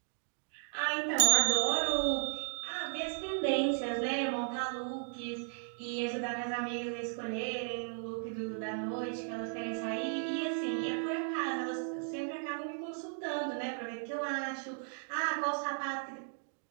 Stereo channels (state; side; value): silent; left; 54 dB below the other